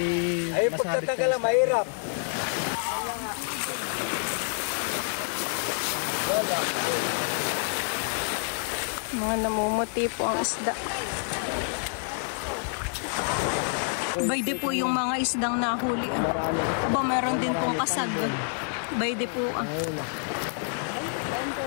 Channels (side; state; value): right; silent; 60 dB below the other